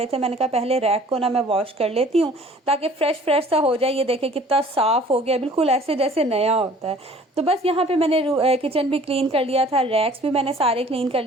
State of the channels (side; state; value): both; normal; correlation 0.51